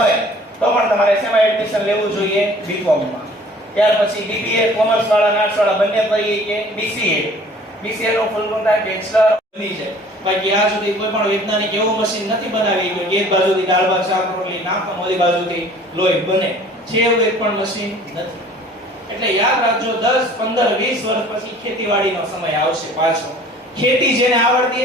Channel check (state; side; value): normal; both; correlation 0.50